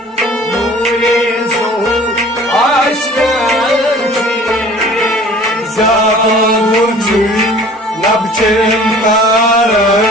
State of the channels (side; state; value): both; normal; correlation 0.48